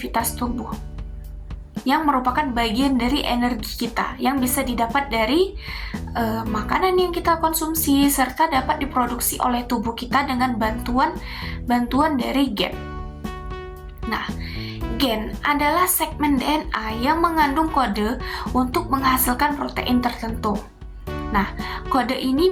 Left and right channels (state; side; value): identical; both; correlation 1.00